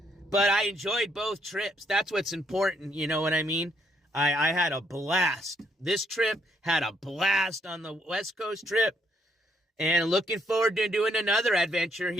But I enjoyed both trips. That's what's important. You know what I mean? I had a blast. This trip had a blast on the West Coast trip. And looking forward to doing another adventure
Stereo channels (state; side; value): normal; both; correlation 0.72